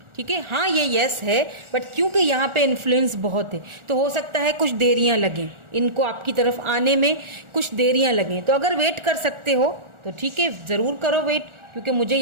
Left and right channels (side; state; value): left; late; 1.4 ms